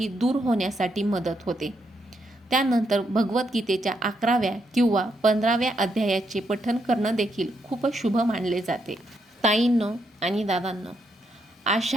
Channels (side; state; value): both; normal; correlation 0.78